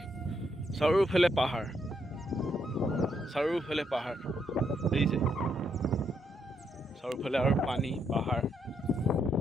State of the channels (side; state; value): both; normal; correlation 0.77